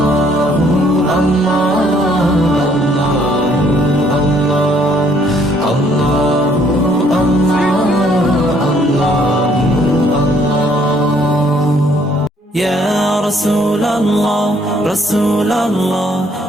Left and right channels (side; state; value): both; normal; correlation 0.65